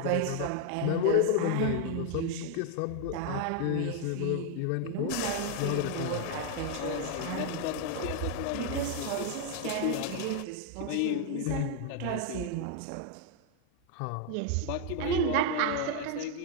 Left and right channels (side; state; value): both; different; correlation 0.00